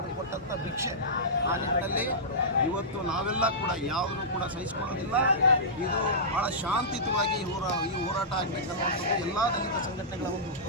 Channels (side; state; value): both; normal; correlation -0.16